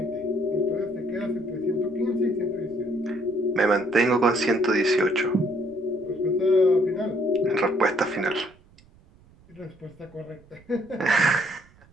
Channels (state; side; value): noise; right; rumble, 27 dB below the sound